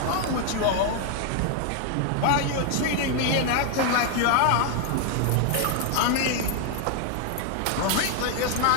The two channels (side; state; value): both; different; correlation 0.00